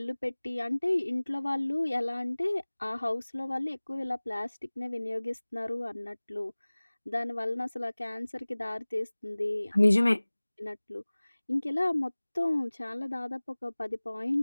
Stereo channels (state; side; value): inverted; both; correlation -1.00